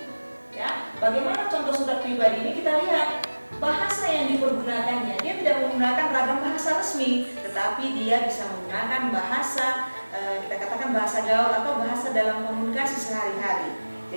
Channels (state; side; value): inverted; both; correlation -1.00